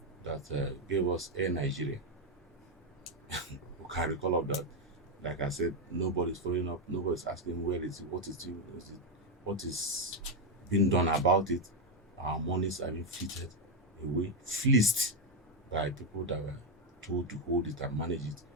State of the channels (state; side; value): normal; both; correlation 0.04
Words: that gave us Air Nigeria. We can recall of that. Like I said, nobody's following up. Nobody's asking where is it, what is being done about it. Our monies are being fleeted away, fleeced by people that were told to hold it and manage it